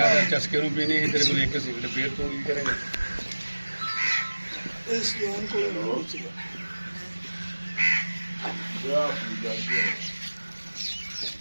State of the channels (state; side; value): inverted; both; correlation -1.00